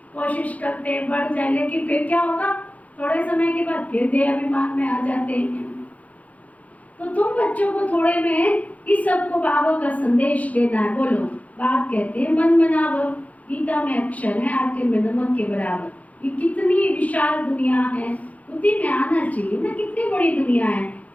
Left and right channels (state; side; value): late; right; 0.070 ms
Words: कोशिश करते हैं, बढ़ जाए, लेकिन फिर क्या होगा, थोड़े समय के बाद फिर देह अभिमान में आ जाते हैं। तो तुम बच्चों को थोड़े में इस सब को बाबा का संदेश देना है। बोलो, बाप कहते हैं मन मनावो, गीता में अक्षर है आटे में नमक के बराबर। ये कितनी विशाल दुनिया है, बुद्धि में आना चाहिए ना, कितनी बड़ी दुनिया है,